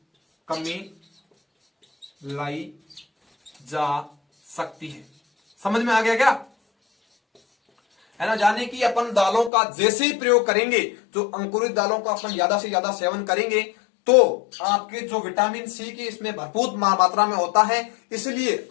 कमी लाई जा सकती है। समझ में आ गया क्या, है ना। जाने कि अपन दालों का जैसे ही प्रयोग करेंगे, जो अंकुरित दालों का अपन ज्यादा से ज्यादा सेवन करेंगे, तो आपके जो विटामिन सी की इसमें भरपूर मात्रा में होता है, इसलिए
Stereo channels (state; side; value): drops out; right; at 9.5 s